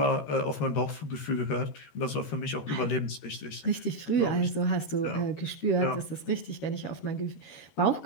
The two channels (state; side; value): late; right; 13 ms